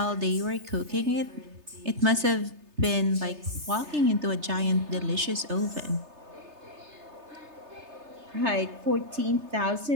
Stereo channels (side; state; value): left; late; 3.3 ms